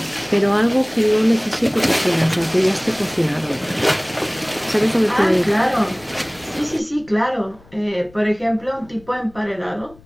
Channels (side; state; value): left; noise; rumble, 25 dB below the sound